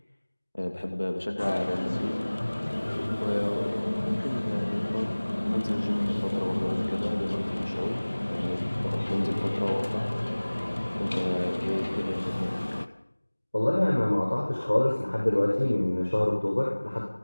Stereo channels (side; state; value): both; inverted; correlation -1.00